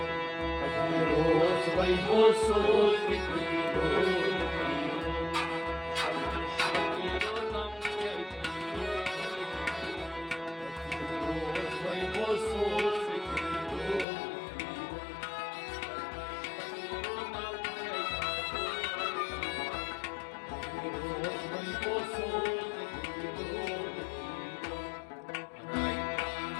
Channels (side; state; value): right; drops out; at 14.1 s